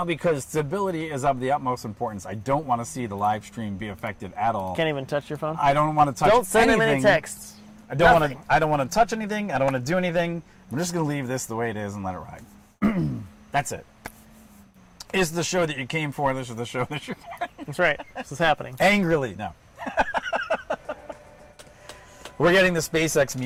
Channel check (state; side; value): identical; both; correlation 1.00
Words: because stability is of the utmost importance, I don't want to see the live stream be affected at all. Can't even touch your phone? I don't want to touch anything. Don't send him any texts. I don't want to touch anything. I don't want to do anything. I'm just going to leave this the way it is and let it ride. That's it. Is the show that you came for. This is the show that you're getting. That's right. This is happening. Angrily, no. We're getting the SpaceX